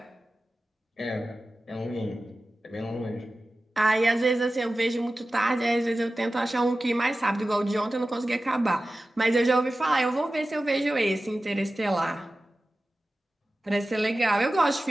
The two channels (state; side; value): normal; both; correlation 0.95